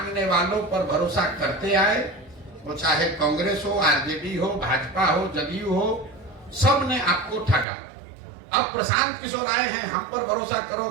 वालों पर भरोसा करते आए, वो चाहे कांग्रेस हो, आरजेडी हो, भाजपा हो, जदयू हो, सब ने आपको ठगा। अब प्रशांत किशोर आए हैं, हम पर भरोसा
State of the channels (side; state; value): left; drops out; at 7.7 s